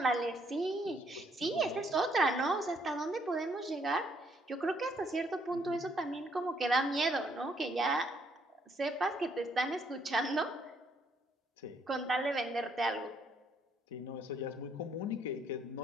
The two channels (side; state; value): both; normal; correlation 0.69